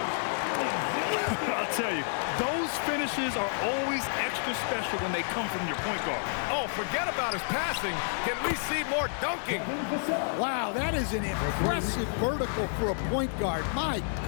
I'll tell you, those finishes are always extra special when they come from your point guard. Oh, forget about his passing. Can we see more dunking? Wow, that is an impressive vertical for a point guard. My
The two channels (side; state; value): right; silent; digital silence